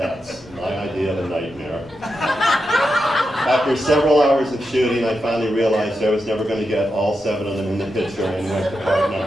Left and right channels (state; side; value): normal; both; correlation 0.87